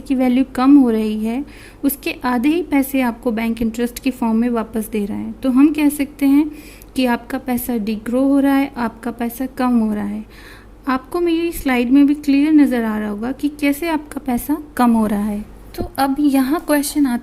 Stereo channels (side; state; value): both; identical; correlation 1.00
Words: की वैल्यू कम हो रही है, उसके आधे ही पैसे आपको बैंक इंटरेस्ट की फॉर्म में वापस दे रहा है। तो हम कह सकते हैं कि आपका पैसा डिग्रो हो रहा है, आपका पैसा कम हो रहा है। आपको मेरी स्लाइड में भी क्लियर नज़र आ रहा होगा कि कैसे आपका पैसा कम हो रहा है। तो अब यहाँ क्वेश्चन